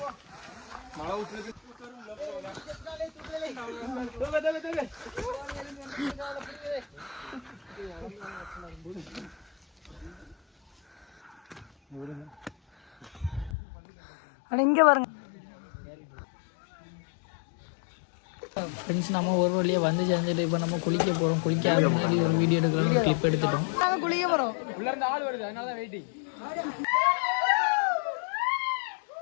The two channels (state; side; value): drops out; right; at 13.6 s